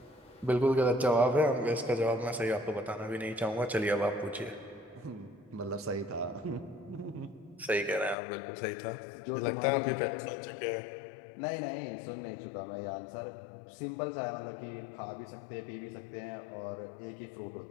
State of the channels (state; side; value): drops out; right; at 8.2 s